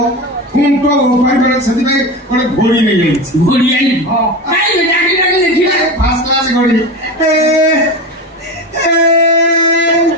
ଖୁଣ୍ଟ ଉପାରି ସେଥିପାଇଁ ଗୋଟେ ଘୋଡ଼ି ନେଇଯାଇଛି ଘୋଡ଼ି ଆଣି ଦେଖିବା ଫାର୍ଷ୍ଟ କ୍ଲାସ ଘୋଡ଼ି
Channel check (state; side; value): normal; both; correlation 0.24